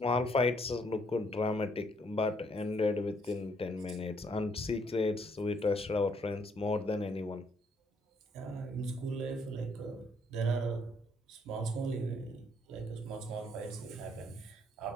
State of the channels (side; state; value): both; normal; correlation 0.69